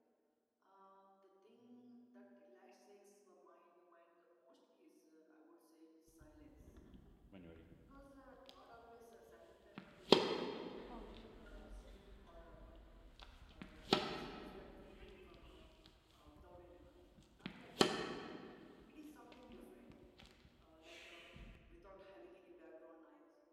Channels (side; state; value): both; identical; correlation 1.00